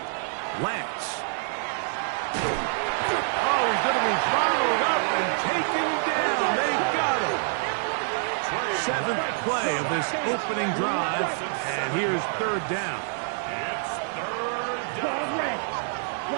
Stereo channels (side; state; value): left; silent; 60 dB below the other